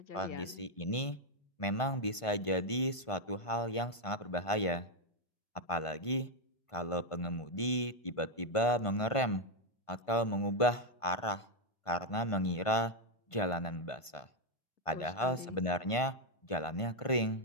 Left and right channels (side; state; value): right; late; 1.5 ms